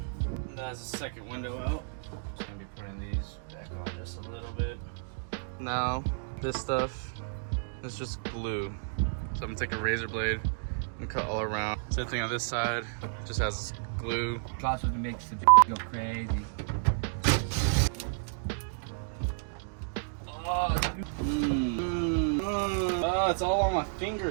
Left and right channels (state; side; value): silent; left; digital silence